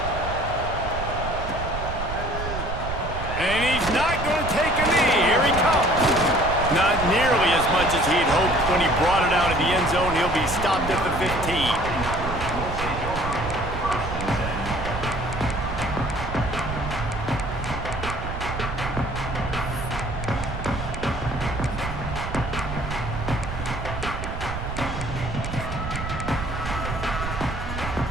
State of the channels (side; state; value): right; noise; rumble, 6 dB below the sound